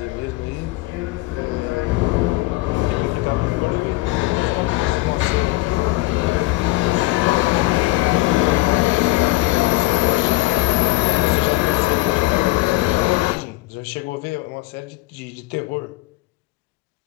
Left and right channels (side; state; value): right; quieter; 20.0 dB